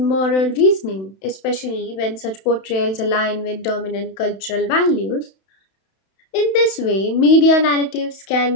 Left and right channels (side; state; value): right; late; 31 ms